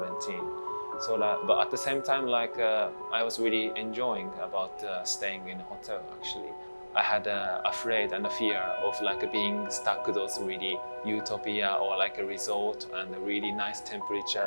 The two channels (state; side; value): inverted; both; correlation -1.00